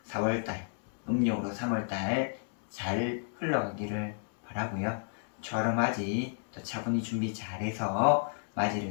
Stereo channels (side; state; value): right; silent; digital silence